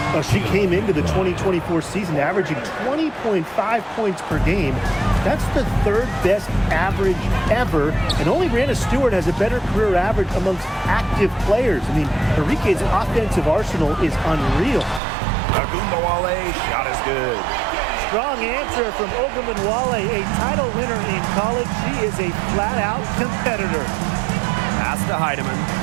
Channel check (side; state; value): left; drops out; at 15.0 s